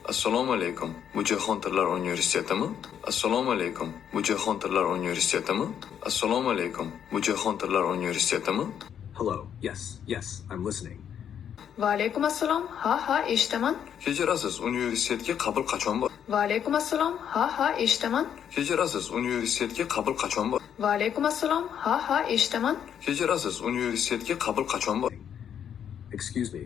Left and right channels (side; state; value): right; quieter; 8.8 dB